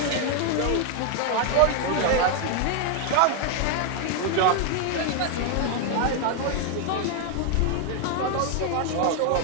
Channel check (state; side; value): different; both; correlation 0.00